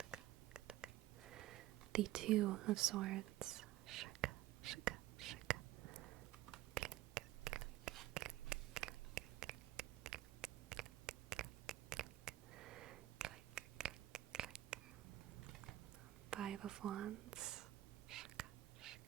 the Two of Swords, 5 of Wands,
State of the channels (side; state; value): left; quieter; 15.1 dB